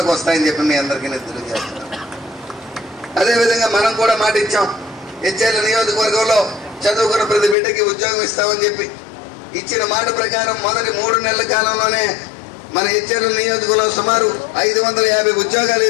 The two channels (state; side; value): drops out; right; at 7.6 s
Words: వస్తాయని చెప్పి మీ అందరికీ నేను తెలియజేస్తున్నాను. అదేవిధంగా మనం కూడా మాట ఇచ్చాం, హెచ్ఎల్ నియోజకవర్గంలో చదువుకున్న ప్రతి బిడ్డకి ఉద్యోగం ఇస్తామని చెప్పి ఇచ్చిన మాట ప్రకారం మొదటి 3 నెలల కాలంలోనే మన హెచ్ఎల్ నియోజకవర్గంలో సుమారు 550 ఉద్యోగాలు